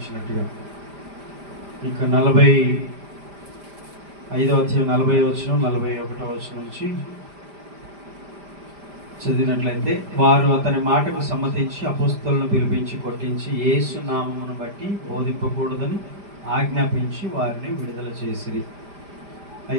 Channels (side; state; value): left; late; 5.0 ms